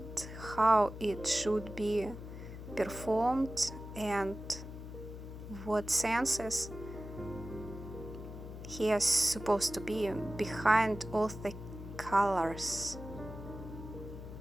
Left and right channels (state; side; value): noise; left; hum, 11 dB below the sound